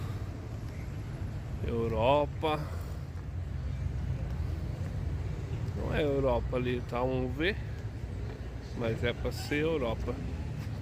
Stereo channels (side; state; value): both; identical; correlation 1.00